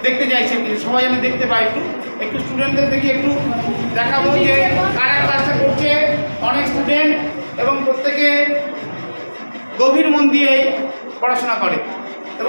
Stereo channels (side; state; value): both; inverted; correlation -1.00